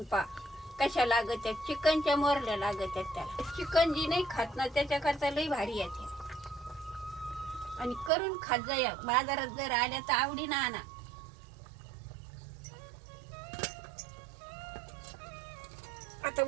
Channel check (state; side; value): drops out; left; at 8.1 s